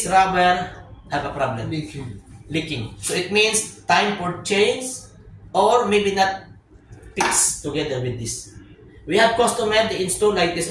rubber have a problem. Leaking. So it means time for change, or maybe not fixed together with this. We have customer they install like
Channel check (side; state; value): both; identical; correlation 1.00